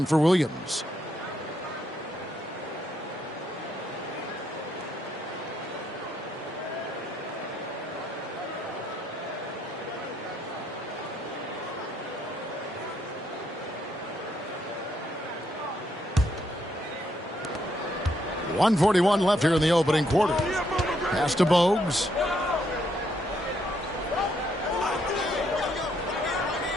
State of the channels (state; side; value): normal; both; correlation 0.75